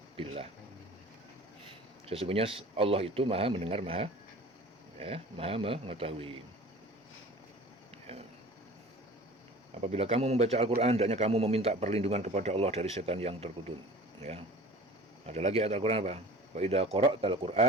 billah. Sesungguhnya Allah itu maha mendengar, maha mengetahui. Ya. Apabila kamu membaca Al-Quran, hendaknya kamu meminta perlindungan kepada Allah dari setan yang terkutuk. Ya. Ada lagi ayat Al-Quran apa? Wa idza qara'tal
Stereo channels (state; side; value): normal; both; correlation 0.42